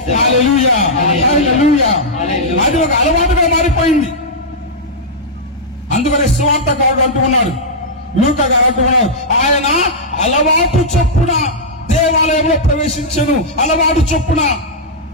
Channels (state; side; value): normal; both; correlation -0.08